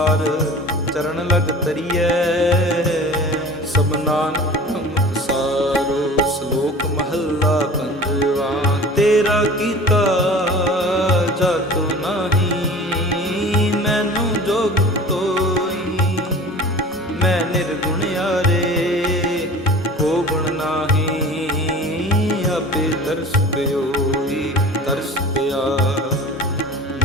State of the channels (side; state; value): both; normal; correlation 0.40